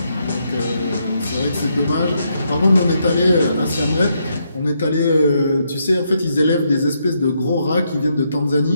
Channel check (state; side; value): inverted; both; correlation -0.78